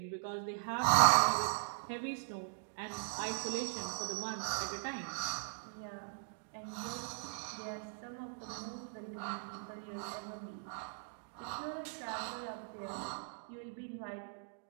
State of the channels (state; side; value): silent; left; digital silence